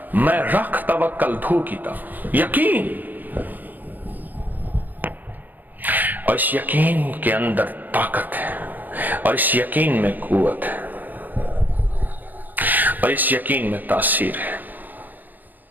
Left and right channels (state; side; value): late; left; 0.085 ms